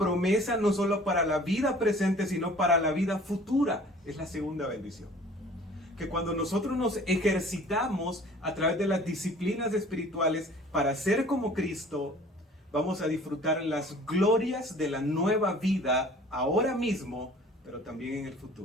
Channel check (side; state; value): both; normal; correlation 0.49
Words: no solo para la vida presente, sino para la vida futura. Es la segunda bendición. Que cuando nosotros nos ejercitamos a través de las disciplinas espirituales para ser como Cristo, vamos a disfrutar las glorias de la nueva vida ahora mismo, pero también en el